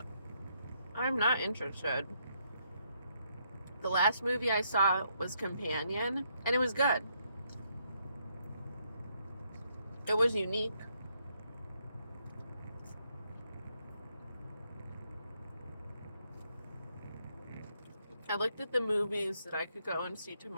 I'm not interested. The last movie I saw was Companion, and it was good. It was unique. I looked at the movies that I could go and see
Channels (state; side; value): inverted; both; correlation -0.75